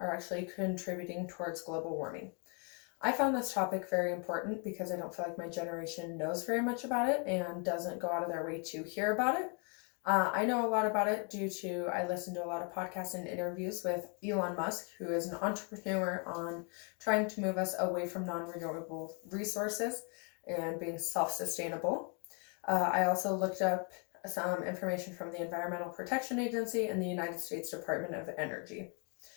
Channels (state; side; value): quieter; right; 36.9 dB